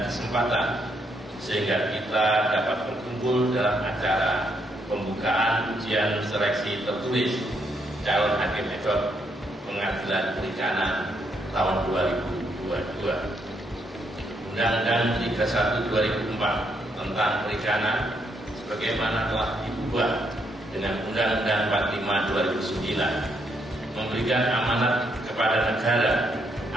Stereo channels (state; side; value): normal; both; correlation 0.75